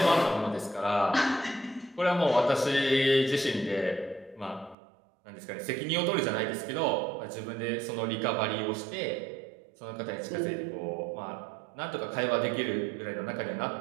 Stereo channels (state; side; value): drops out; left; at 4.8 s